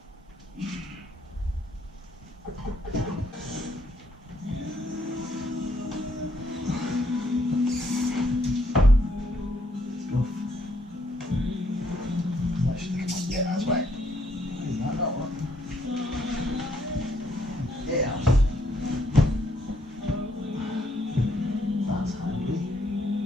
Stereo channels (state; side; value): normal; both; correlation 0.71